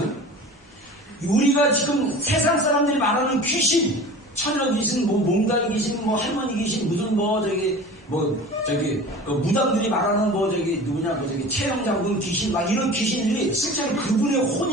우리가 지금 세상 사람들이 말하는 귀신, 처녀 귀신, 몽달 귀신, 할머니 귀신, 무슨 그 무당들이 말하는 최영장군 귀신, 막 이런 귀신들이 실제로 그분의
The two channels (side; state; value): both; normal; correlation 0.38